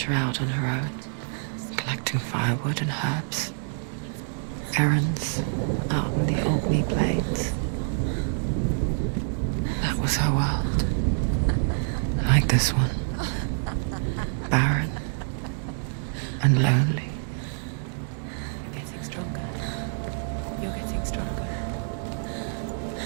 out on her own, collecting firewood and herbs. Errands out on the Albany Plains. That was her world. Like this one. Barren and lonely.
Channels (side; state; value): left; silent; digital silence